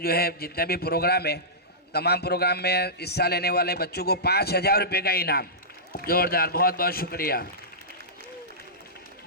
है जितने भी प्रोग्राम है, तमाम प्रोग्राम में हिस्सा लेने वाले बच्चों को 5000 रुपये का इनाम, जोरदार, बहुत बहुत शुक्रिया।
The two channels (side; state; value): both; normal; correlation -0.17